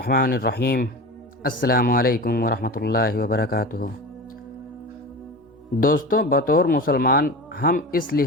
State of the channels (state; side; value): normal; both; correlation 0.30